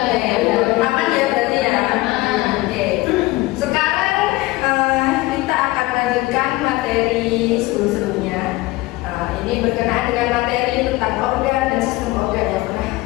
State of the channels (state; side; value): quieter; right; 20.0 dB